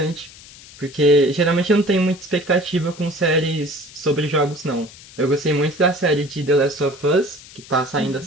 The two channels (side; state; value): left; noise; hiss, 20 dB below the sound